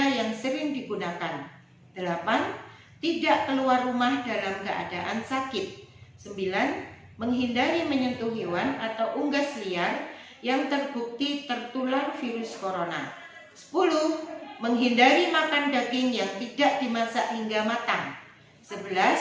yang sering digunakan. 8. Tidak keluar rumah dalam keadaan sakit. 9. Menghindari menyentuh hewan atau unggas liar yang terbukti tertular virus corona. 10. Menghindari makan daging yang tidak dimasak hingga matang.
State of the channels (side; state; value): both; identical; correlation 1.00